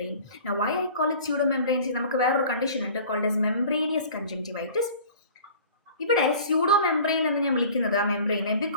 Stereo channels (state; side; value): inverted; both; correlation -0.45